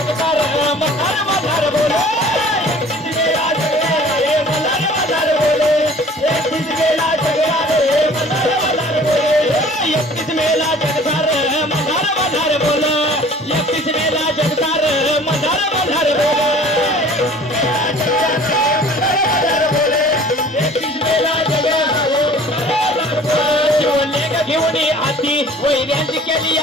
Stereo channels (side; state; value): both; normal; correlation 0.49